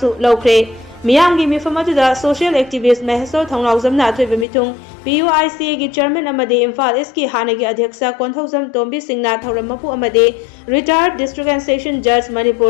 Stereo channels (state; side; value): drops out; right; at 4.5 s